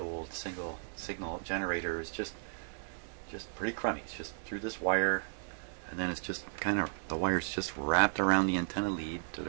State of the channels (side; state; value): left; silent; digital silence